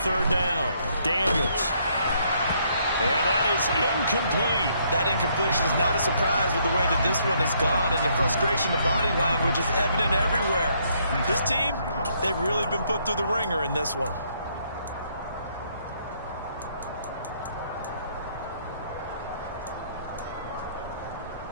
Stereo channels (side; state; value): both; inverted; correlation -0.69